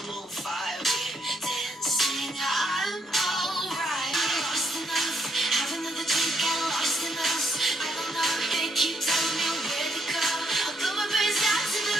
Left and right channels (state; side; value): normal; both; correlation 0.74